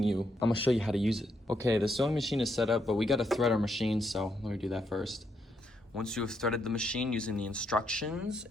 you, I'm gonna show you how to use it. Okay, the sewing machine is set up, but we gotta thread our machine, so let me do that first. Once you have threaded the machine using the instructions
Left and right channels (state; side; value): normal; both; correlation 0.78